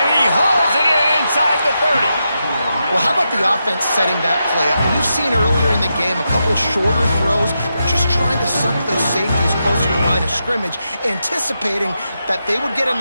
he hauls it in inside the 30. Well, how about the offense setting that play up? We've seen earlier in the game a couple shorter throws. They're just trying to suck those safeties closer to the line of scrimmage, anticipating that they would get an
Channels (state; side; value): inverted; both; correlation -0.86